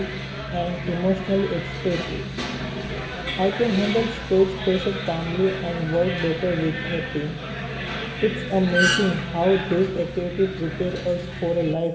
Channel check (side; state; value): both; identical; correlation 1.00